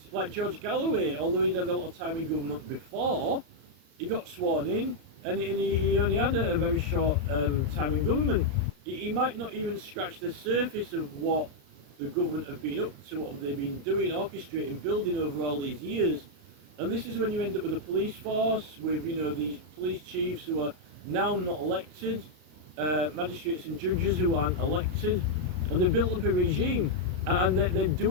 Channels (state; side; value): late; left; 34 ms